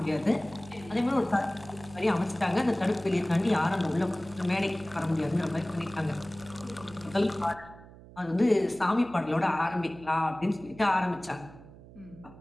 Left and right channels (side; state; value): right; noise; hum, 20 dB below the sound